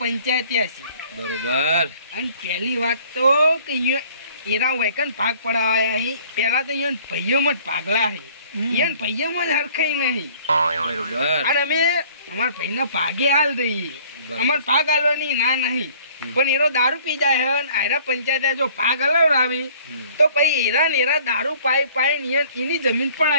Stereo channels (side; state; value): both; inverted; correlation -0.55